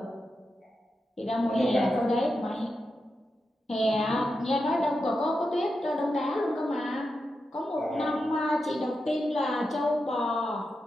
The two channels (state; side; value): normal; both; correlation 0.88